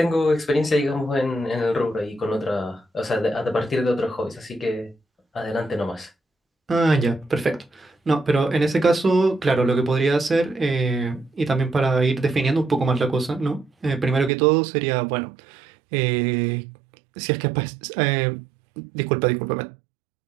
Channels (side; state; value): left; drops out; at 14.3 s